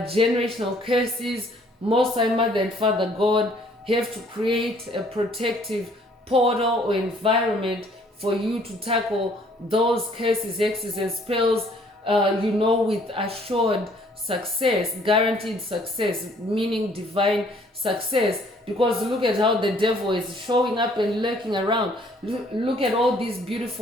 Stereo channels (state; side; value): normal; both; correlation 0.60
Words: curses, Most High Mother and Father God have to create a protective portal or environment for you to tackle those curses, hexes, and spells, with assured success, guaranteed success, meaning divine success. Because look at how the devil is showing up and lurking around. Look at all these